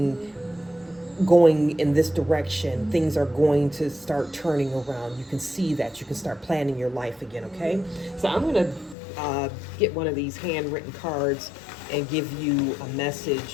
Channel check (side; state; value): right; drops out; at 9.0 s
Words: in this direction, things are going to start turning around. You can see that. You can start planning your life again, okay? So I'm going to get one of these handwritten cards and give you a